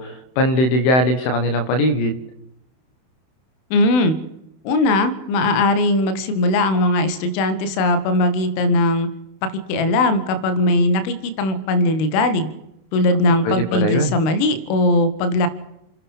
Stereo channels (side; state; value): right; late; 32 ms